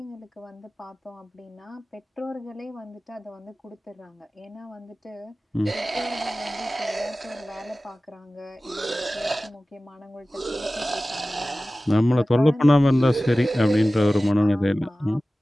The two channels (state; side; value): normal; both; correlation 0.97